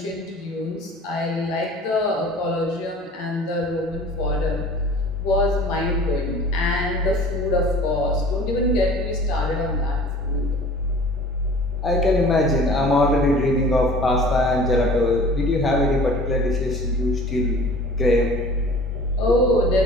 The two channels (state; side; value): normal; both; correlation 0.45